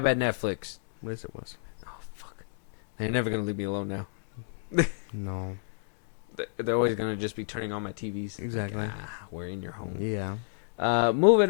at Netflix. Yes, it was. Oh fuck, they're never gonna leave me alone now. No. They're always gonna just be turning on my TVs. Exactly. Like, we're in your home. Yeah. Moving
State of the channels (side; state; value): right; silent; digital silence